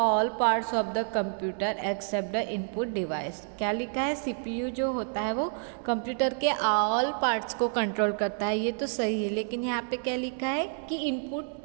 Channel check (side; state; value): left; silent; 59 dB below the other